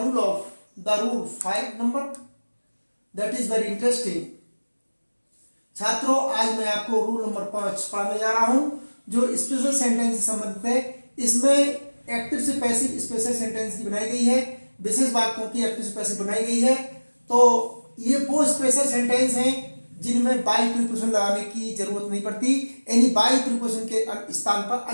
5 number. That is very interesting. छात्रों, आज मैं आपको रूल नंबर 5 पढ़ाने जा रहा हूं जो स्पेशल सेंटेंस से संबंधित है। इसमें एक्टिव से पैसिव स्पेशल सेंटेंस की बनाई गई है, विशेष वाक्यों की एक्टिव से पैसिव बनाई गई है। तो ये वो स्पेशल सेंटेंस हैं जिनमें बाई प्रीपोजिशन लगाने की जरूरत नहीं पड़ती, यानी बाई प्रीपोजिशन के स्थान पर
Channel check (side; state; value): both; inverted; correlation -1.00